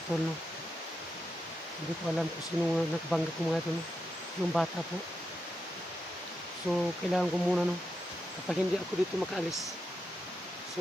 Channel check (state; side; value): normal; both; correlation 0.86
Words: tol, hindi ko alam kung sino nagbanggit ko mga ito, yung bata po. So kailangan ko muna, kapag hindi ako dito makaalis,